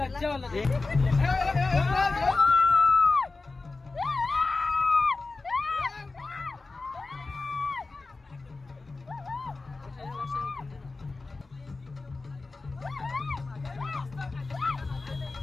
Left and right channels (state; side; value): quieter; right; 3.7 dB